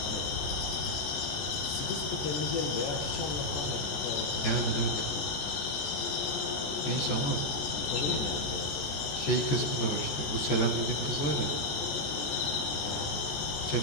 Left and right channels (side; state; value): right; late; 14 ms